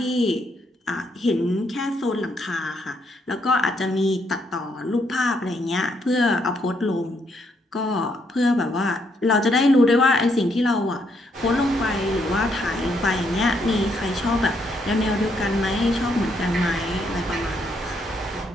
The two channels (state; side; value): normal; both; correlation 0.74